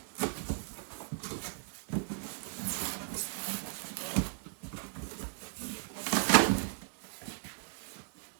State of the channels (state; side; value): silent; left; 54 dB below the other